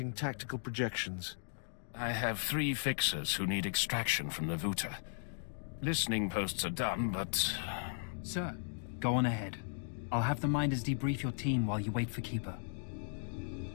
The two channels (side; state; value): right; silent; digital silence